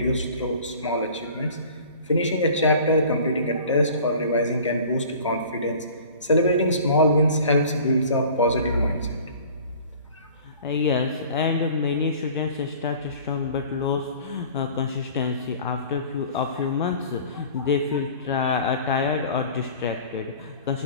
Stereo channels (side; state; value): both; inverted; correlation -0.45